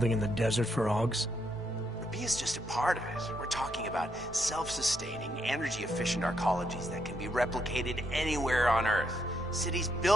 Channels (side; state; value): both; normal; correlation 0.78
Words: in the desert for AUGs. Rabia's just a part of it. We're talking about self-sustaining, energy-efficient arcologies that can be replicated anywhere on Earth. Cities